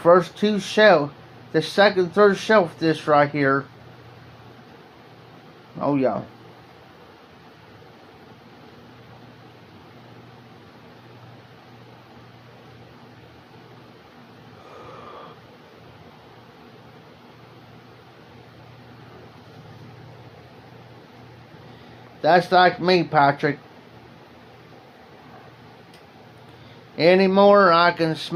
two shelf, the second, third shelf, this right here. Oh yeah. That's like me, Patrick. Anymore, I can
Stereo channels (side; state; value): both; identical; correlation 1.00